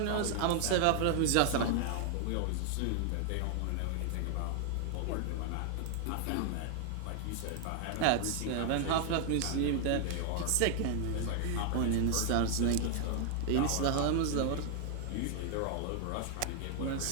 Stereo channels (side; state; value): both; different; correlation 0.00